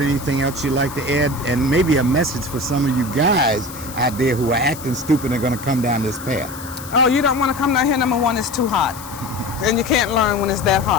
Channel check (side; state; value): left; noise; hiss, 15 dB below the sound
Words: else you'd like to add? And maybe a message for some of you guys out there who are acting stupid and are going to come down this path. Oh, you don't want to come down here. Number one, it's too hot. And you can't learn when it's that